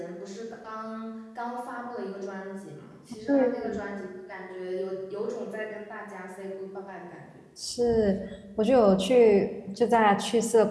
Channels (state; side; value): identical; both; correlation 1.00